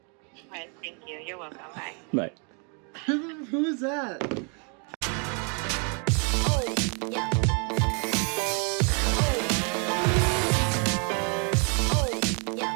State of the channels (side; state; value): left; quieter; 37.5 dB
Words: All right, thank you. You're welcome. Bye. Bye. Who is that?